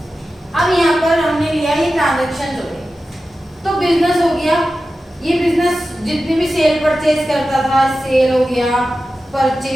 अब यहाँ पर हमने लिया ये ट्रांजेक्शन हो गए, तो बिजनेस हो गया। ये बिजनेस जितनी भी सेल परचेज करता था, सेल हो गया,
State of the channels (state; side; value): normal; both; correlation 0.93